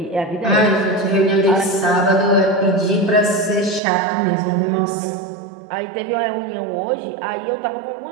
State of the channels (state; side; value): drops out; left; at 3.8 s